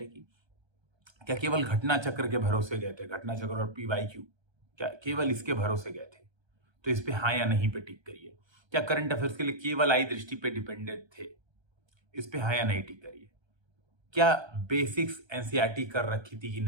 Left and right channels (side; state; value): left; late; 1.3 ms